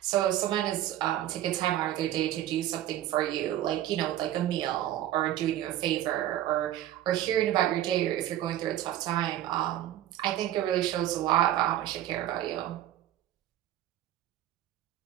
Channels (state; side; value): quieter; left; 12.8 dB